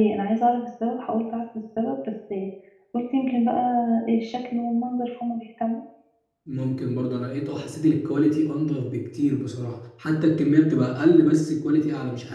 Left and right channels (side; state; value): both; identical; correlation 1.00